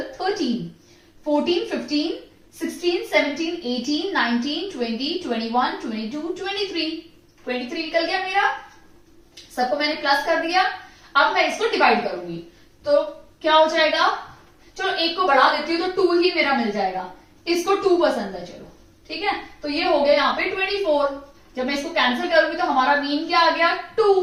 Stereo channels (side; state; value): both; identical; correlation 1.00